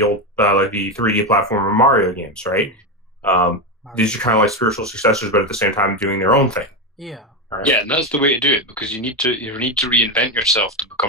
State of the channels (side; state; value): both; normal; correlation 0.13